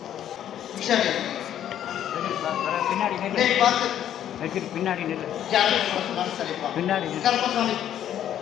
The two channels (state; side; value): quieter; right; 10.7 dB